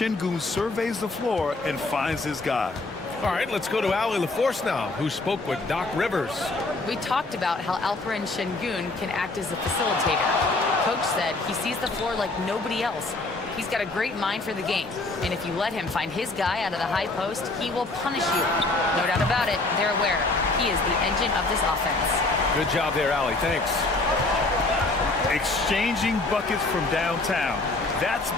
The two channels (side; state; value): right; quieter; 3.2 dB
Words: surveys the floor and finds his guy. All right, let's go to Ali LaForce now, who spoke with Doc Rivers. We talked about how Alperen Şengün can act as a facilitator. Coach said he sees the floor like nobody else. He's got a great mind for the game. And if you let him find his guy out of the high post, he will punish you. No doubt about it, they're aware. He is the engine of this offense. Good job there, Ali. Thanks. Exchanging buckets from downtown. That's